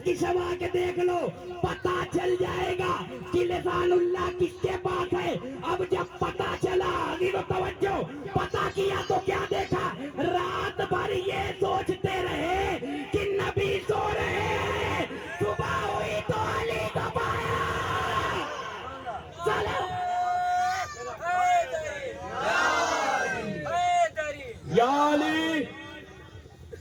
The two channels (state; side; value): identical; both; correlation 1.00